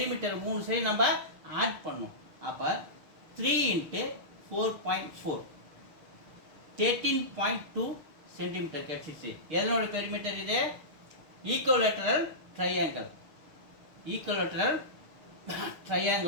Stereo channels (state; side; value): late; left; 6.5 ms